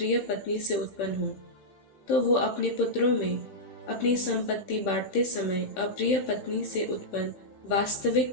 पत्नी से उत्पन्न हो, तो वो अपने पुत्रों में अपनी संपत्ति बांटते समय अप्रिय पत्नी से उत्पन्न वास्तविक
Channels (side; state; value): right; late; 15 ms